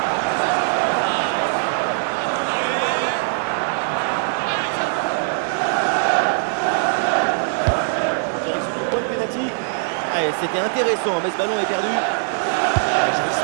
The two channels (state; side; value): silent; left; digital silence